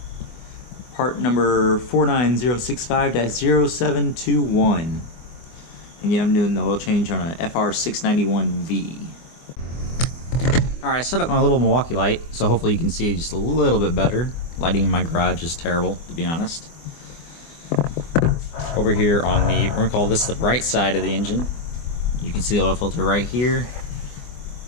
part number 49065-0721. Again, I'm doing the oil change on a FR691V. Alright, I set up my little Milwaukee light, so hopefully you can see just a little bit better. Lighting in my garage is terrible, to be honest. Over here on the, we're going to call this the right side of the engine. You can see the oil filter right here,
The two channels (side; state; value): right; late; 24 ms